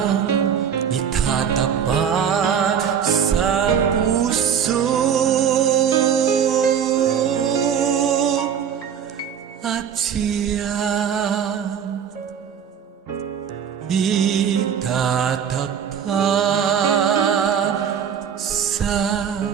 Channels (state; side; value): quieter; left; 8.0 dB